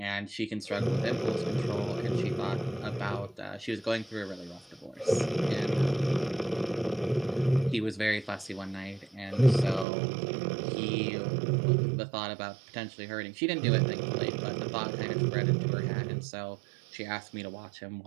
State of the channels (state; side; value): drops out; left; at 9.9 s